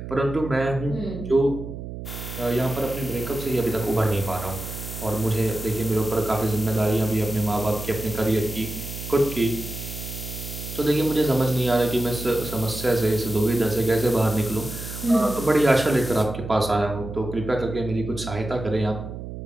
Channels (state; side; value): noise; right; hum, 9 dB below the sound